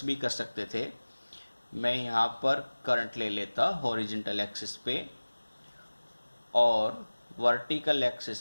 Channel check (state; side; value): inverted; both; correlation -1.00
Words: भी कर सकते थे, मैं यहाँ पर करंट ले लेता हॉरिजॉन्टल एक्सिस पे और वर्टिकल